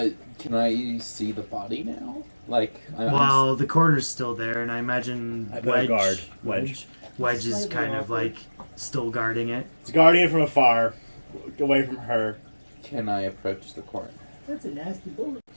Can I see the body now? Like, Well, the coroner's still there, and I imagine I put a Wedge. guard. Wedge is kind of like still guarding it. It's guardian from afar, away from her. can I approach the coroner? That's a nasty bullet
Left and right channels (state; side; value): inverted; both; correlation -1.00